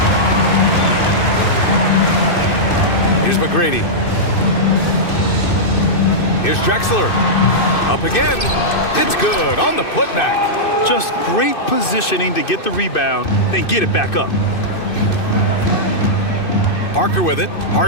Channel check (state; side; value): late; right; 2.6 ms